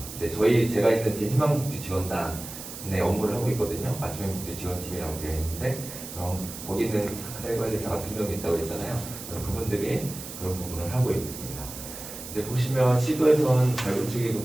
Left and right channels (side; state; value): right; noise; hiss, 11 dB below the sound